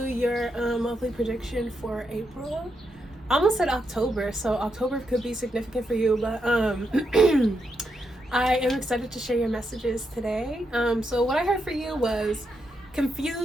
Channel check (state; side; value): normal; both; correlation 0.82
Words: your monthly prediction for April. I almost said October, so October could be significant for you, but I am excited to share your messages today. So what I heard for you was